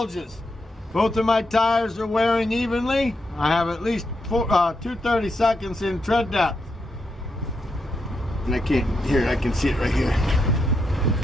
Both of my tires are wearing evenly. I have at least 2/30 seconds in tread depth. And I can see it right here.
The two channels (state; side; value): normal; both; correlation 0.82